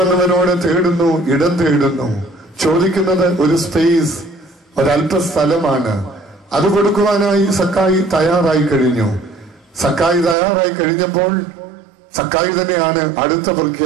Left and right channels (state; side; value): drops out; left; at 10.4 s